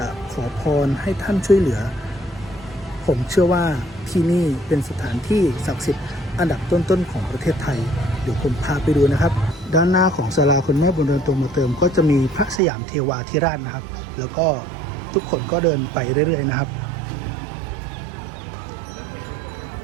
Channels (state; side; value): drops out; left; at 12.6 s